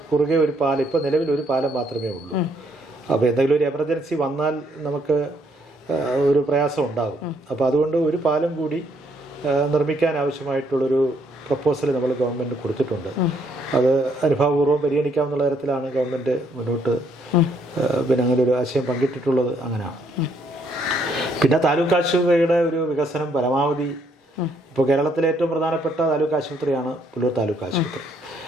കുറുകെ ഒരു പാലം, ഇപ്പോൾ നിലവിൽ ഒരു പാലം മാത്രമേ ഉള്ളൂ. അപ്പോൾ എന്തെങ്കിലും ഒരു എമർജൻസി വന്നാൽ നമുക്ക് ഒരു പ്രയാസം ഉണ്ടാകും. അപ്പോൾ അതുകൊണ്ട് ഒരു പാലം കൂടി നിർമ്മിക്കാൻ ആവശ്യമായിട്ടുള്ളൊരു പ്രപ്പോസൽ നമ്മൾ ഗവൺമെൻറ് കൊടുത്തിട്ടുണ്ട്. അത് അനുഭാവപൂർവ്വം പരിഗണിക്കാവുന്ന തരത്തിലാണ് ഗവൺമെൻറ് മുന്നോട്ട് അങ്ങനെ ഒരു ആശയം പങ്കിട്ടിട്ടുള്ളത്. അങ്ങനെയാണ്. പിന്നെ താലൂക്ക് ആശുപത്രിയുടെ ഒരു വികസനം പരമാവധി, ഇപ്പോൾ കേരളത്തിലെ ഏറ്റവും പ്രധാനപ്പെട്ട താലൂക്ക് ആശുപത്രിയാണ് പുല്ലൂർ താലൂക്ക് ആശുപത്രി.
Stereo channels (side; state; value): both; normal; correlation 0.70